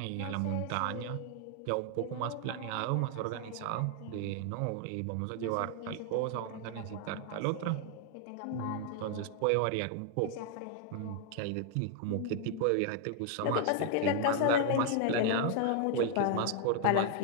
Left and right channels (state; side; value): different; both; correlation 0.00